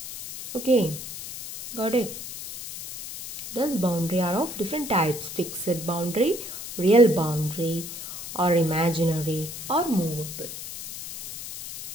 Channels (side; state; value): left; noise; hiss, 10 dB below the sound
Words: Okay, got it? Thus boundary are of different types: fixed boundary, real boundary, or imaginary or movable.